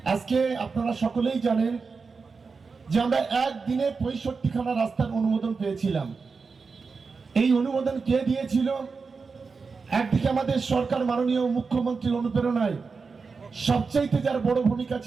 আজকে আপনারা সকলেই জানেন যে আমরা একদিনে ৬৫খানা রাস্তার অনুমোদন পেয়েছিলাম। এই অনুমোদন কে দিয়েছিল? একদিকে আমাদের সরকার মাননীয় মুখ্যমন্ত্রীর অনুপ্রেরণায় সবচাইতে যার বড় ভূমিকা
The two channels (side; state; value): left; quieter; 4.8 dB